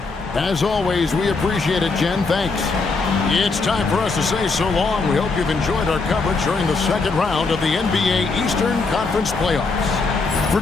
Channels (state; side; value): quieter; right; 4.0 dB